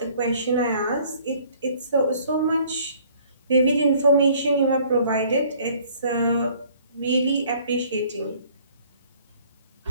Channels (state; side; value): inverted; both; correlation -0.57